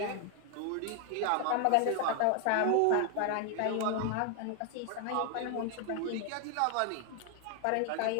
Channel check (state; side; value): different; both; correlation 0.00